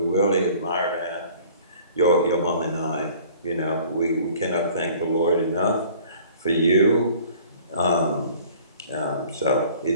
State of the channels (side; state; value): both; inverted; correlation -0.51